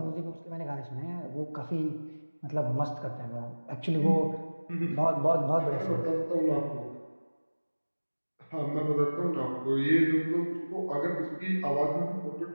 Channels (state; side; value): inverted; both; correlation -1.00